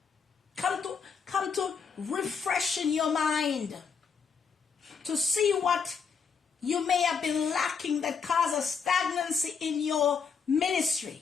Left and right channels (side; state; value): right; quieter; 6.0 dB